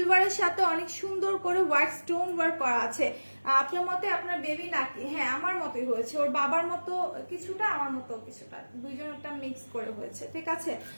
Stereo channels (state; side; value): inverted; both; correlation -1.00